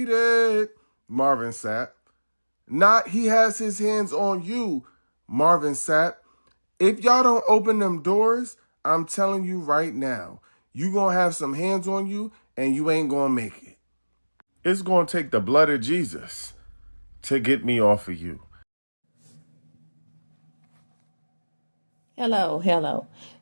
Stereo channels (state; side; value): inverted; both; correlation -1.00